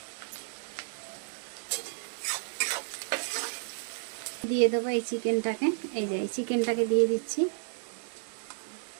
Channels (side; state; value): left; silent; digital silence